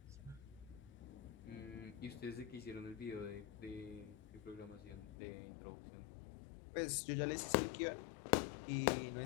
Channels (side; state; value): right; drops out; at 5.2 s